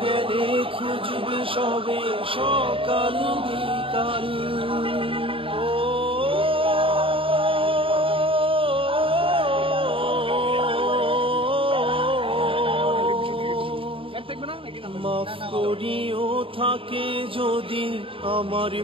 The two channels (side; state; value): left; late; 0.26 ms